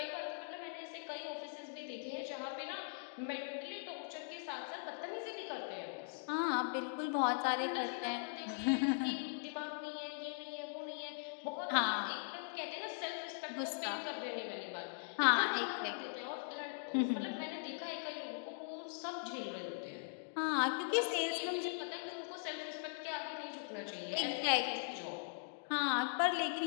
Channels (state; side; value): silent; right; digital silence